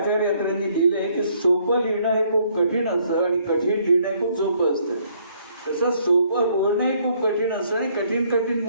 अत्रेंनी लिहिलंय की सोपं लिहिणं हे खूप कठीण असतं आणि कठीण लिहिणं हे खूप सोपं असतं. तसं सोपं बोलणं हे खूप कठीण असतं आणि कठीण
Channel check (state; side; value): inverted; both; correlation -0.66